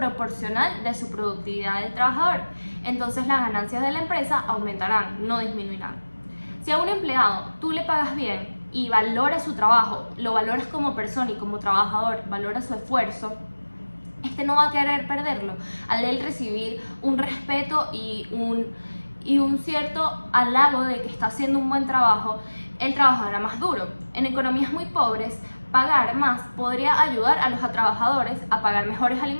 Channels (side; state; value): both; inverted; correlation -1.00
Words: de su productividad del trabajador, entonces las ganancias de la empresa aumentarán, no disminuirán. Si a un empleado tú le pagas bien y valoras su trabajo, lo valoras como persona y como trabajador, valoras su esfuerzo, este no va a querer perderlo. Al él recibir un respeto y un cierto halago de que está haciendo un buen trabajo, él trabajará más duro. En economías muy pobres, pagar más podría ayudar a los trabajadores a pagar mejores